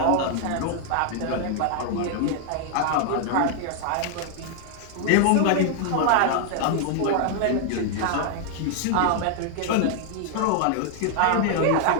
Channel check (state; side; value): different; both; correlation 0.00